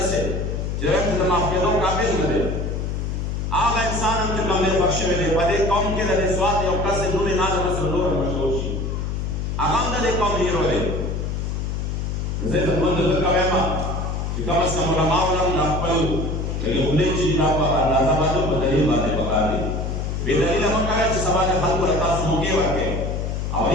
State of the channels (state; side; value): noise; left; hum, 2 dB below the sound